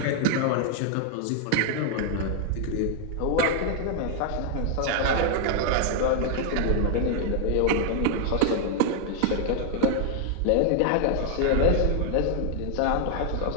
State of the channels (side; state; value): both; different; correlation 0.00